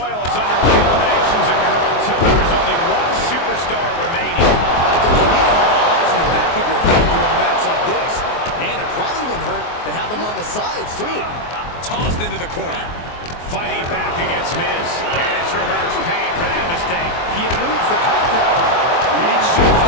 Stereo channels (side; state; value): right; late; 24 ms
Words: is underway. Eliminations occur until there is only one superstar remaining. You need to have eyes in the back of your head during a match like this. And it probably wouldn't hurt to have them on the sides, too. Tossed into the corner. Fighting back against Miz. And it's reverse pain for that mistake. He eludes the contact. Reed shows